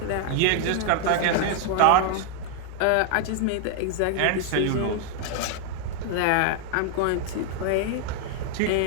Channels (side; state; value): both; different; correlation 0.00